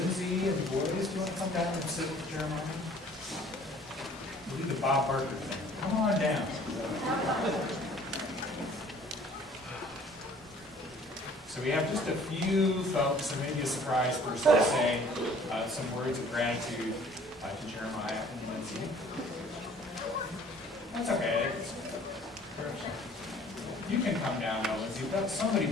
and the boys, do you want to come down and sit with Jeremiah? We'll do the Bob Barker thing. Come on down. So we have just a few folks, and maybe a surprise person to say some words of gratitude to Jeremiah and Lindsay. That's okay. You can come down now, Lindsay, but somebody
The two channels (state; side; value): normal; both; correlation 0.53